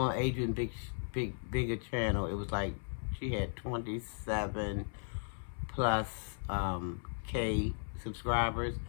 Adrian Bigger channel, it was like she had 27 plus K subscribers,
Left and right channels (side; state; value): right; silent; 54 dB below the other